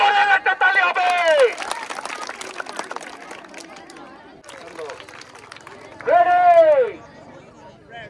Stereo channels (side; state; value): both; identical; correlation 1.00